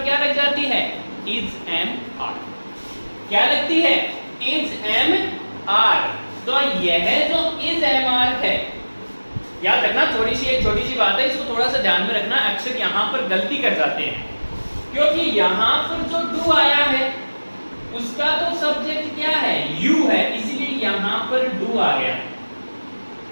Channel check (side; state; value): both; inverted; correlation -1.00